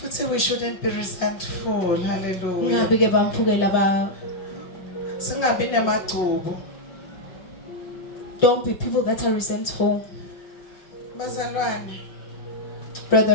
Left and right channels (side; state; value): right; late; 5.6 ms